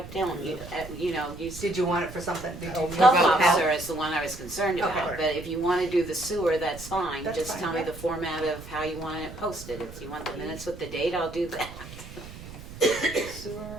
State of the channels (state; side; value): noise; right; rumble, 14 dB below the sound